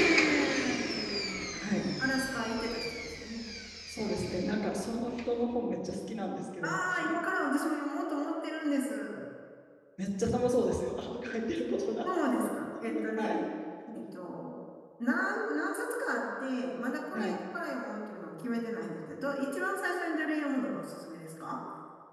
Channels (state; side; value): identical; both; correlation 1.00